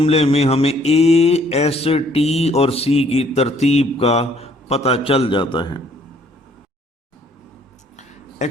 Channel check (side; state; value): both; normal; correlation 0.63